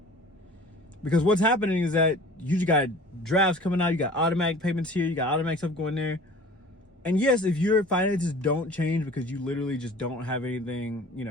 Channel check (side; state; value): both; normal; correlation 0.44